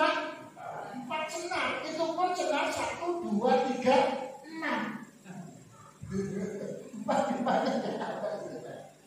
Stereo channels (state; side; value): identical; both; correlation 1.00